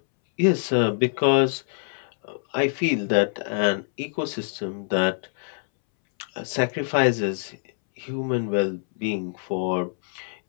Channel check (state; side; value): silent; right; 62 dB below the other